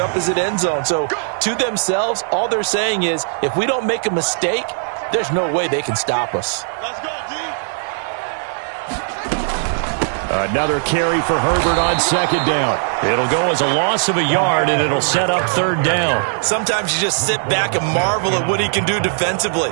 opposite end zone. So, to themselves, all they're saying is, if we don't make a mistake, there's no way they can stop us. Another carry for Herbert on 2nd down. It'll go as a loss of a yard, and it'll set up 3rd down. Sometimes you just sit back and marvel at what he can do defensively.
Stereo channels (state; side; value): silent; left; digital silence